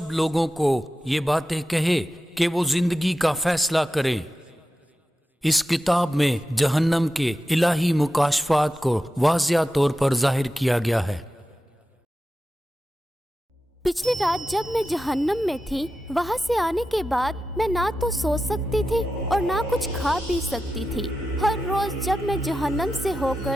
لوگوں کو یہ باتیں کہے کہ وہ زندگی کا فیصلہ کریں۔ اس کتاب میں جہنم کے الہی مکاشفات کو واضح طور پر ظاہر کیا گیا ہے۔ پچھلی رات جب میں جہنم میں تھی، وہاں سے آنے کے بعد میں نہ تو سو سکتی تھی اور نہ کچھ کھا پی سکتی تھی۔ ہر روز جب میں جہنم سے ہو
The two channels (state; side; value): normal; both; correlation 0.91